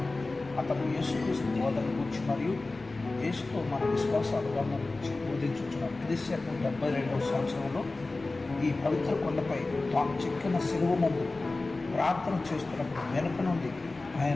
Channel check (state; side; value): quieter; right; 3.3 dB